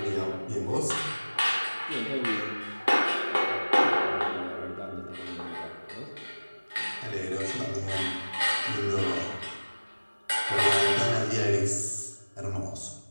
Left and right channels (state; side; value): inverted; both; correlation -1.00